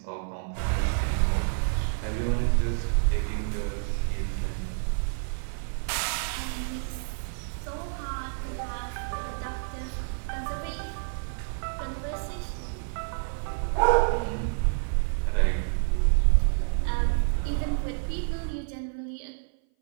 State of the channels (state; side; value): silent; left; 57 dB below the other